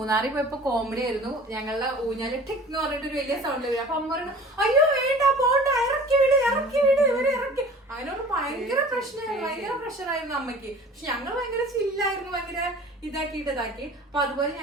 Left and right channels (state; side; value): normal; both; correlation 0.45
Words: പോയപ്പോ കോമഡി ആയിരുന്നു. ഞങ്ങളുടെ ഊഞ്ഞാല് ടിക് എന്ന് പറഞ്ഞിട്ട് ഒരു വലിയ സൗണ്ട് വരും. അപ്പൊ അമ്മ പറഞ്ഞു അയ്യോ വേണ്ട പോണ്ട, ഇറക്കി വിട് ഇവരെ ഇറക്കി. അതിനോട് ഭയങ്കര പ്രശ്നമായിരുന്നു, ഭയങ്കര പ്രഷറായിരുന്നു അമ്മയ്ക്ക്. പക്ഷെ ഞങ്ങൾ ഭയങ്കര ചില്ലായിരുന്നു, ഭയങ്കര ഇതാക്കി. അപ്പൊ അതുപോലെ